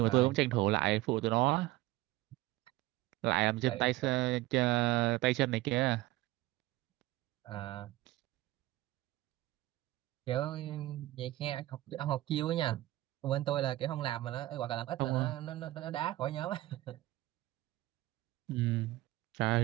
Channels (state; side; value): quieter; left; 17.4 dB